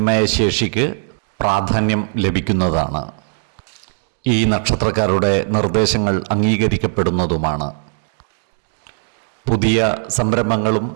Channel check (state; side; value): silent; left; digital silence